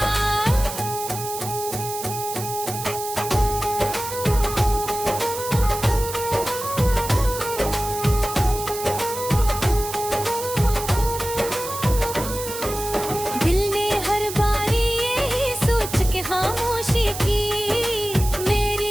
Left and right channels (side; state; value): right; noise; hiss, 8 dB below the sound